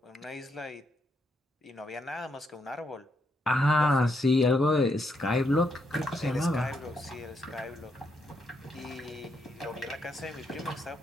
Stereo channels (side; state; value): both; normal; correlation 0.78